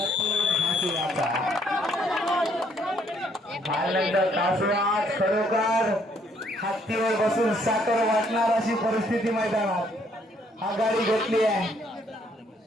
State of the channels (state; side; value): normal; both; correlation 0.67